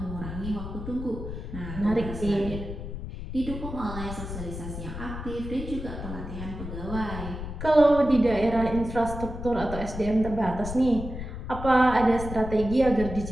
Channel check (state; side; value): noise; left; rumble, 8 dB below the sound